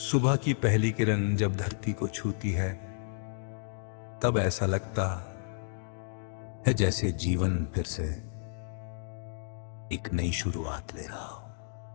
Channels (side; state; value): right; silent; digital silence